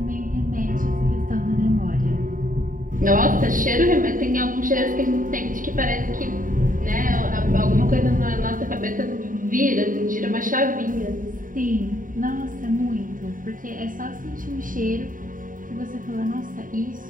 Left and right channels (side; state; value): left; late; 0.39 ms